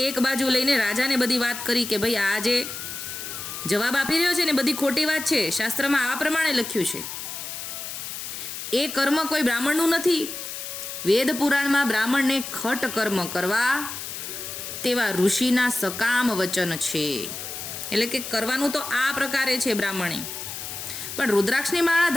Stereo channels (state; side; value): noise; left; hiss, 8 dB below the sound